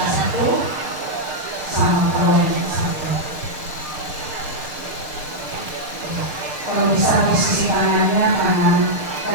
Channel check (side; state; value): left; late; 6.7 ms